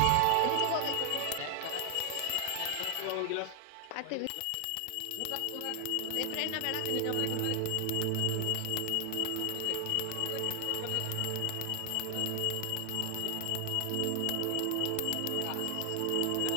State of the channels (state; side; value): different; both; correlation 0.00